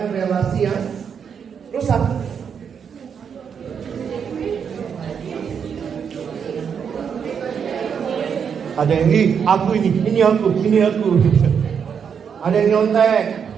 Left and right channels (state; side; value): quieter; left; 7.1 dB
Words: relasi yang rusak. Ada yang aku ini aku. Ada yang nyontek.